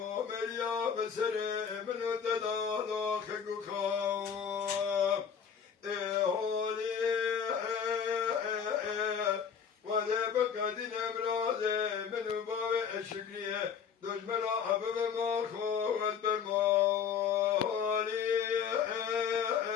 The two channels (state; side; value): quieter; right; 7.2 dB